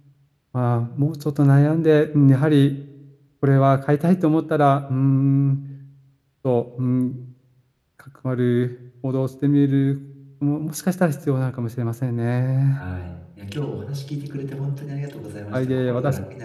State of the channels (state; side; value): identical; both; correlation 1.00